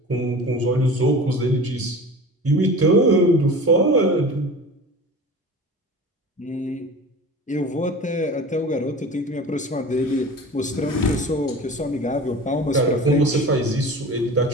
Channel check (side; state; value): both; normal; correlation 0.36